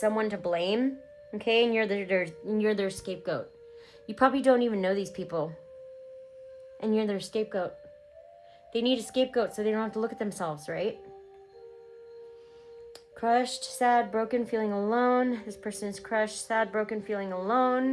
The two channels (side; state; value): both; identical; correlation 1.00